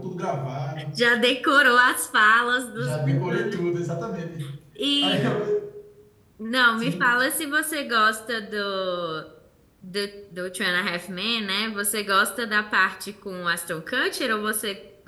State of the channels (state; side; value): identical; both; correlation 1.00